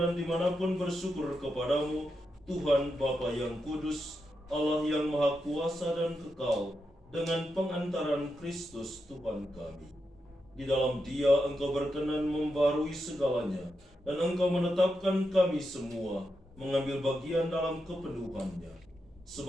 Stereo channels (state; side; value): normal; both; correlation 0.86